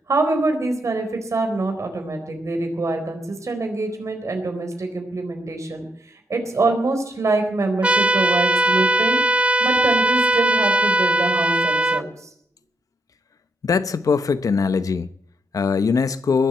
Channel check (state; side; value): normal; both; correlation 0.77